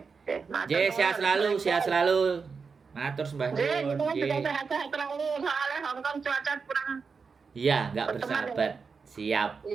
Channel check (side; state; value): left; quieter; 5.2 dB